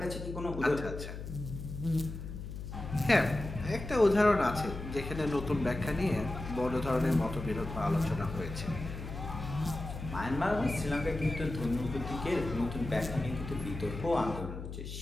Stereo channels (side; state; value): left; noise; hum, 8 dB below the sound